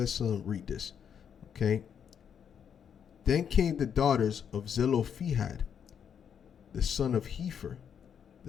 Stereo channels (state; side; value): quieter; right; 7.9 dB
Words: Okay. Then came the daughters of Zelophehad, the son of Hepher,